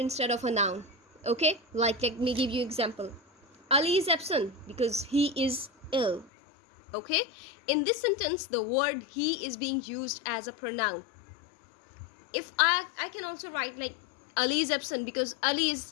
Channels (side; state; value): right; drops out; at 6.3 s